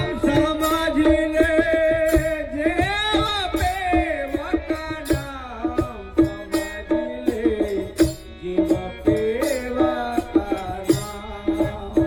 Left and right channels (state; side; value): identical; both; correlation 1.00